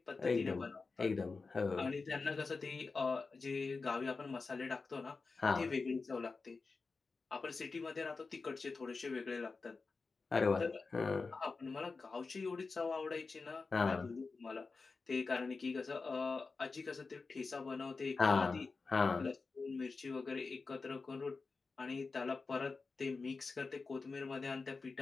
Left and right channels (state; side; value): quieter; right; 4.2 dB